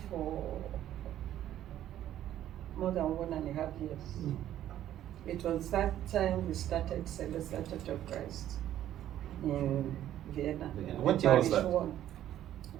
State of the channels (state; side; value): quieter; left; 12.0 dB